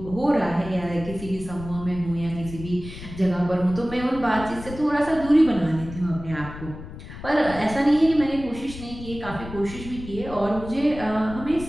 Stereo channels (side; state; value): left; noise; rumble, 12 dB below the sound